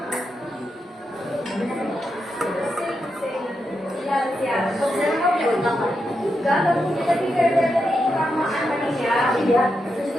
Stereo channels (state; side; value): normal; both; correlation 0.85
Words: Enggak, tapi dari kesamaan manusia. Iya. Terus